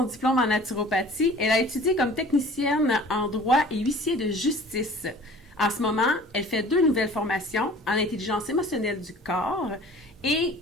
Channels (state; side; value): normal; both; correlation 0.46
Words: diplôme en naturopathie, elle a étudié comme technicienne en droit et huissier de justice. En ce moment, elle fait 2 nouvelles formations en intelligence émotionnelle du corps et